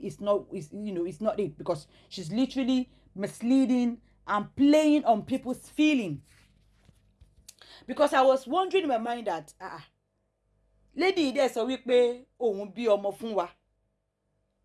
not it, because she's literally misleading and playing on people's feeling. Because I was wondering in my mind that lady dẹ̀ sọ wípé òun bí ọmọ fún wa.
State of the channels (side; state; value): both; identical; correlation 1.00